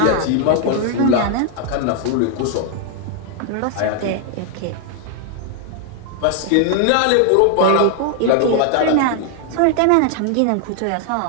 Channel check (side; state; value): both; different; correlation 0.00